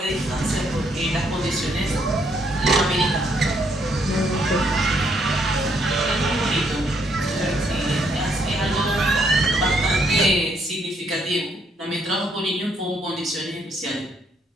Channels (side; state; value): both; normal; correlation 0.71